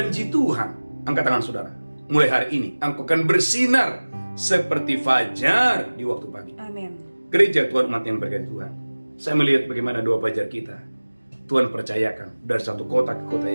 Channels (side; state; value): both; inverted; correlation -1.00